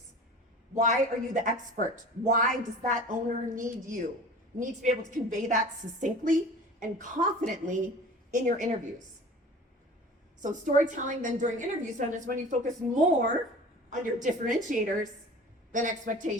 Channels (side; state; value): both; normal; correlation 0.40